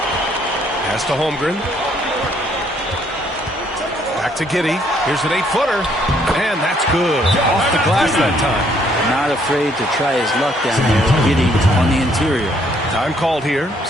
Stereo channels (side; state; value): both; normal; correlation 0.67